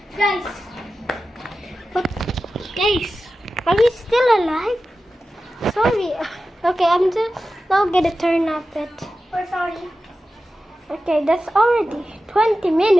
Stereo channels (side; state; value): both; normal; correlation 0.93